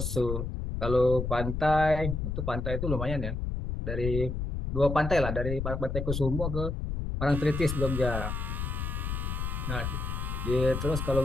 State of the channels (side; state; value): left; noise; rumble, 3 dB below the sound